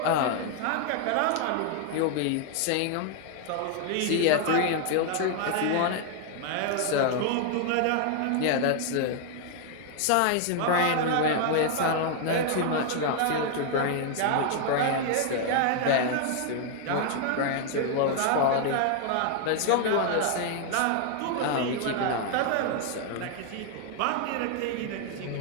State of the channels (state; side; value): different; both; correlation 0.00